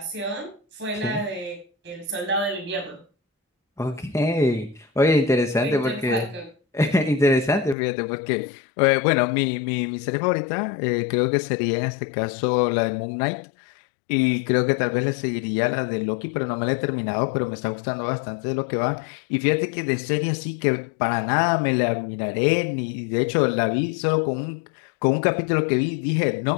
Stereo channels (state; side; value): drops out; right; at 7.8 s